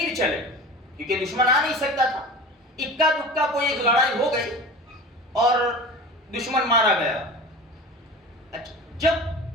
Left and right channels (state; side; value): normal; both; correlation 0.35